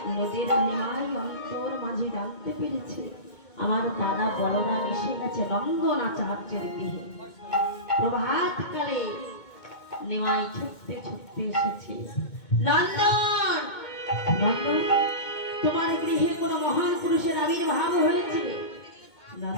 নদীর নিমাই অন্তর মাঝে জানতে পেরেছে আমার দাদা বলরাম এসে গেছে নন্দন আচার্যের গৃহে। প্রভাতকালে নিমাই ছুটতে ছুটতে এসেছে। নন্দন, নন্দন, তোমার গৃহে কোনো মহান পুরুষের আবির্ভাব হয়েছে?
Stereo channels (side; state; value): right; late; 2.2 ms